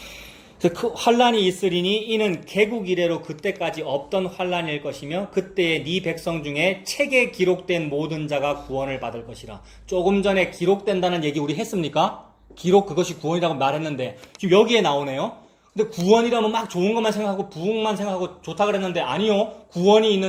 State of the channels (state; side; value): identical; both; correlation 1.00